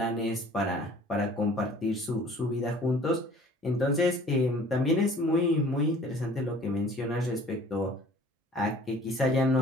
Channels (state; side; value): normal; both; correlation 0.50